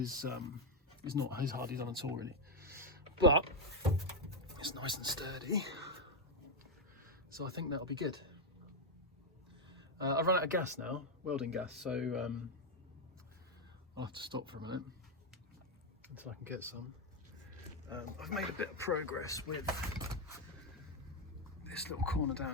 not as hardly done at all, really, but it's nice and sturdy. So I think that'll be good. I've run out of gas now, welding gas, so I'll have to stop for a minute until I can get some. I've made a bit of progress with this little corner down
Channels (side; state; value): both; normal; correlation 0.03